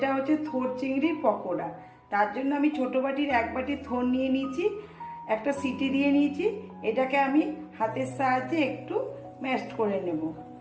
হচ্ছে থোড় চিংড়ির পকোড়া। তার জন্য আমি ছোটো বাটির 1 বাটি থোড় নিয়ে নিয়েছি, একটা সিটি দিয়ে নিয়েছি। এটাকে আমি হাতের সাহায্যে একটু ম্যাশড করে নেব।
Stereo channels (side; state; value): both; identical; correlation 1.00